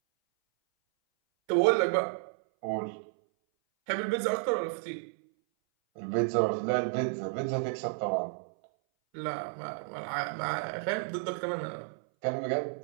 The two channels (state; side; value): silent; left; 57 dB below the other